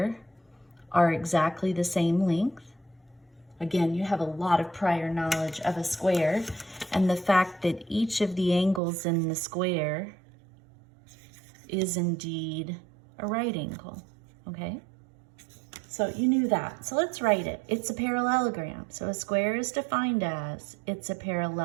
are exactly the same length. Again, you have a lot of prior knowledge of a square, and the fact that each of the angles in the square is indeed a right angle, okay? So you knew that. So let's write it. It's a parallelogram. So a square is defined as, it's a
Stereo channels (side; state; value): left; drops out; at 8.8 s